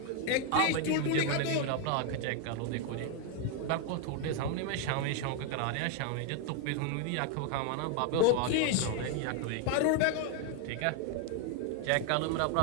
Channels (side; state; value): both; different; correlation 0.01